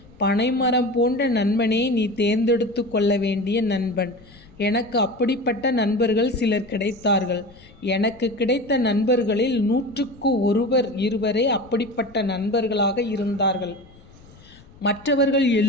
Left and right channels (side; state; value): left; noise; rumble, 24 dB below the sound